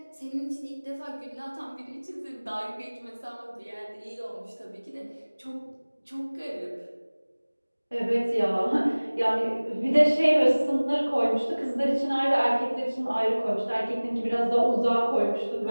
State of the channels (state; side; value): inverted; both; correlation -1.00